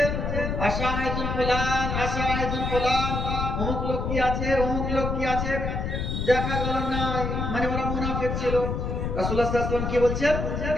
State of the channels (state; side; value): noise; left; rumble, 2 dB below the sound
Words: আশাহিদুল ফুলান, আশাহিদুল ফুলান, অমুক লোক কি আছে, অমুক লোক কি আছে, দেখা গেল না, মানে ওরা মুনাফিক ছিল। রাসূলুল্লাহ সাল্লাল্লাহু আলাইহি ওয়াসাল্লাম কি বলছেন?